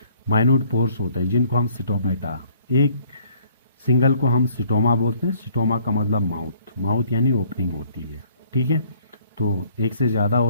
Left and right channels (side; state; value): both; inverted; correlation -0.60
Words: माइन्यूट पोर्स होते हैं जिनको हम सिटोमेटा, एक सिंगल को हम सिटोमा बोलते हैं, सिटोमा का मतलब माउथ यानी ओपनिंग होती है, ठीक है, तो एक से ज़्यादा